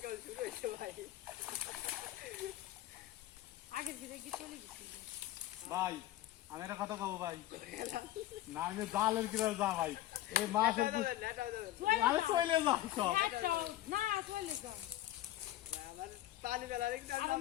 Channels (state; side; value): quieter; right; 14.6 dB